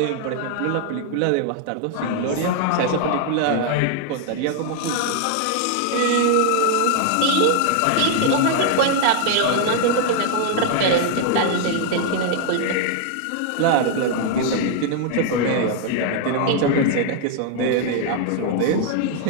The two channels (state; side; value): different; both; correlation 0.00